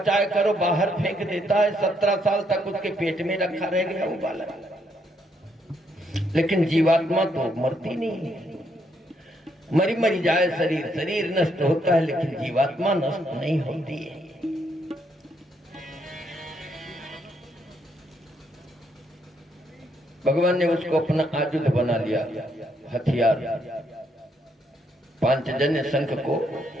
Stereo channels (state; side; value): normal; both; correlation 0.74